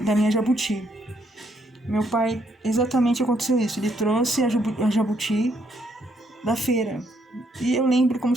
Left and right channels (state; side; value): normal; both; correlation 0.72